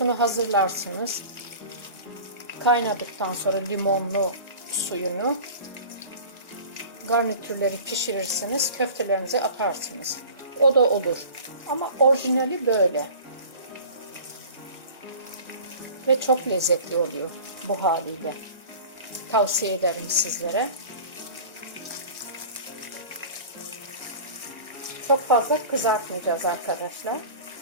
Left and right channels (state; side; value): inverted; both; correlation -0.40